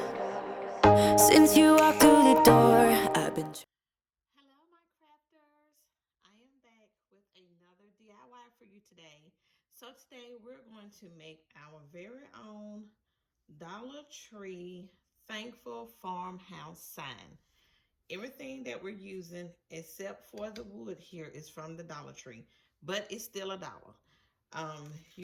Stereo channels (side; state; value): both; identical; correlation 1.00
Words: Since you walked through the door, I've been. Hello, my crafters. I am back with another DIY for you today. So, today we're going to make our very own Dollar Tree Thankful Farmhouse sign. Everything that we're using, except for the wood here, is from the Dollar Tree, but it's still a dollar.